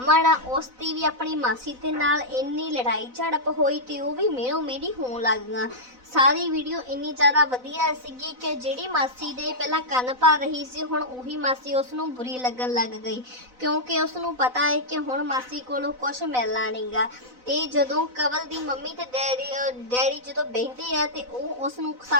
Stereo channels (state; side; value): late; left; 4.0 ms